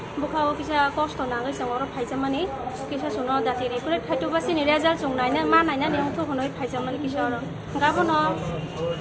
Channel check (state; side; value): identical; both; correlation 1.00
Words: bukawo kisa cost nangai song oro phaijamani kisa suno dati recruit khaitu basini result song naina ma naina ni ongtho honoi phaijamani kisa oro gabono